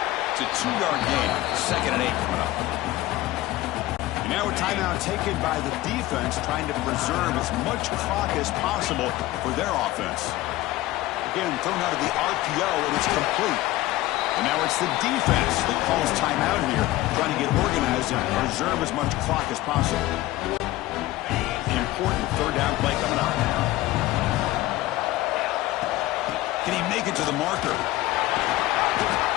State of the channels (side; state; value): right; quieter; 17.0 dB